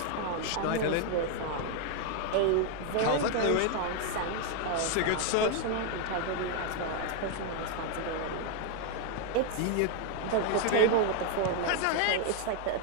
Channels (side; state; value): both; different; correlation 0.01